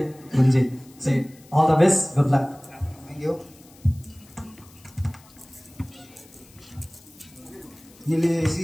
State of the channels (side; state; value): left; noise; hiss, 26 dB below the sound